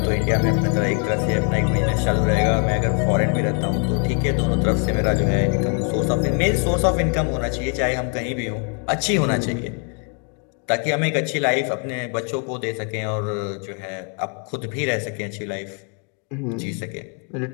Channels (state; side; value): quieter; right; 37.6 dB